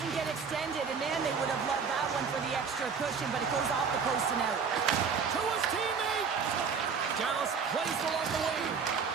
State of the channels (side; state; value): left; quieter; 5.9 dB